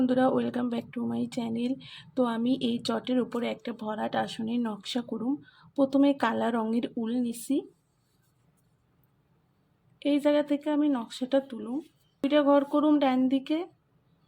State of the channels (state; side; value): identical; both; correlation 1.00